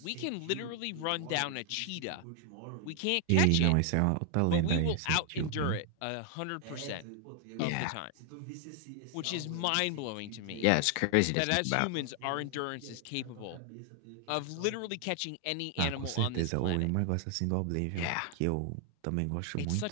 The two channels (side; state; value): both; different; correlation 0.00